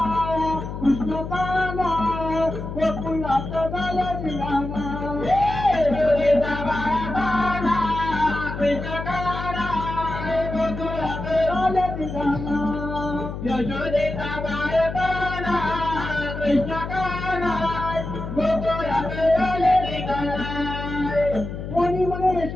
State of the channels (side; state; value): left; noise; hum, 7 dB below the sound